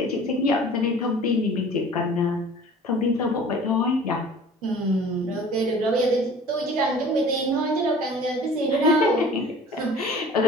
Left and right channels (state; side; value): normal; both; correlation 0.46